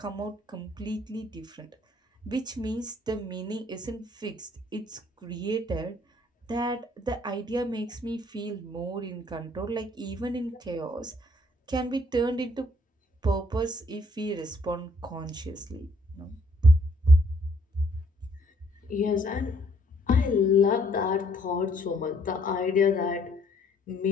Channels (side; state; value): both; normal; correlation 0.65